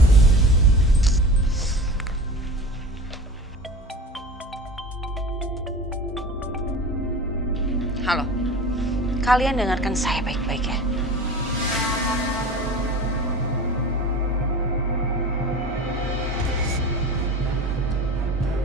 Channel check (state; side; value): normal; both; correlation 0.36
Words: Halo, kalian dengarkan saya baik-baik ya.